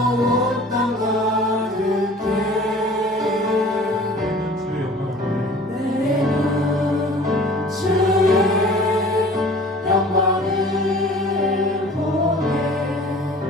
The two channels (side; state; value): both; normal; correlation 0.46